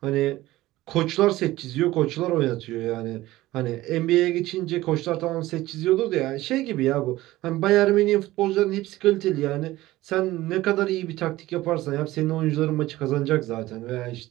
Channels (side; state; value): left; quieter; 17.0 dB